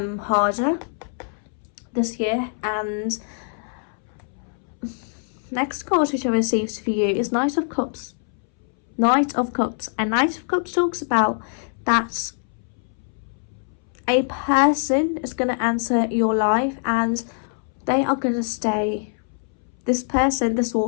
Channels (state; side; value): silent; right; 63 dB below the other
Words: this year. And next card which I received for you is Knight of Cups. And Knight of Cups talks about that a person is going to enter your life and they are going to stay. This person, this